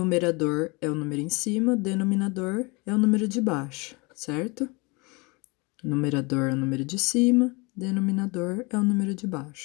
é o número em cima, denominador é o número de baixo, certo? Numerador é o número de cima, denominador é o número de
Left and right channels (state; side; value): quieter; right; 27.7 dB